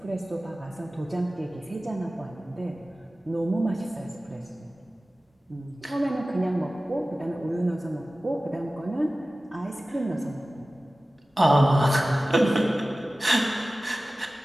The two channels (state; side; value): normal; both; correlation 0.97